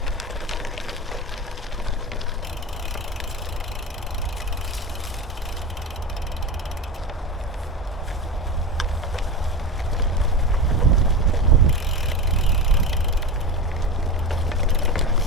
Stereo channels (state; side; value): normal; both; correlation 0.24